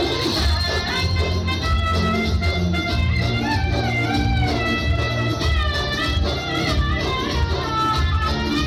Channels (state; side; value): identical; both; correlation 1.00